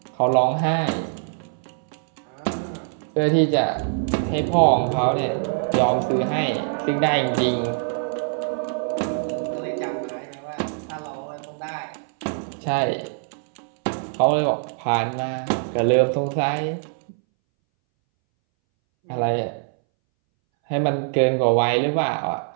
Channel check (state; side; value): silent; left; 62 dB below the other